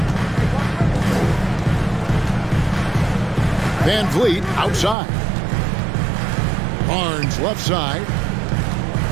Van Vliet outside. Barnes left side.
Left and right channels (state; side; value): drops out; left; at 5.0 s